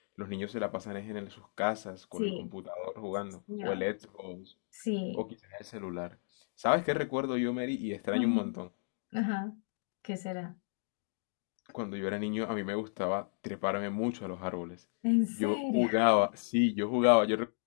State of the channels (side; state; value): right; silent; digital silence